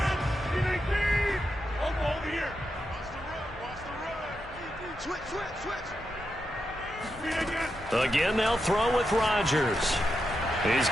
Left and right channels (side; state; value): both; normal; correlation 0.86